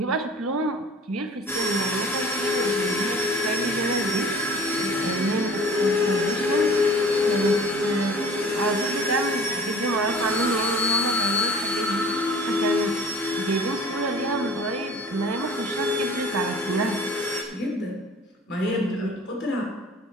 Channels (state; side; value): normal; both; correlation 0.46